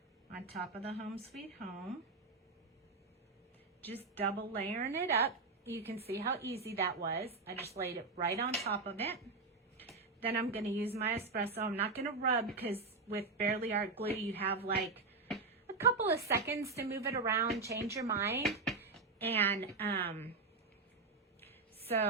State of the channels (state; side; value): quieter; left; 4.0 dB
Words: on top of the Home Sweet Home. Just double layering it up. You can see how easy that was. I just laid it right on top of it. Then I'm going to use my espresso. I'm not going to rub because with Barely Art glue, you have like a couple of seconds to move it around, change your mind. And